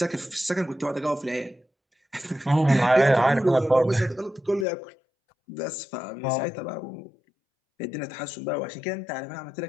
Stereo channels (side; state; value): right; drops out; at 4.7 s